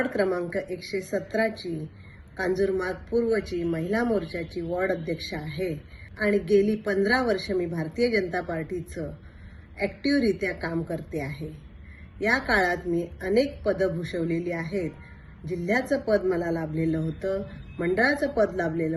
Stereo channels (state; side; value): identical; both; correlation 1.00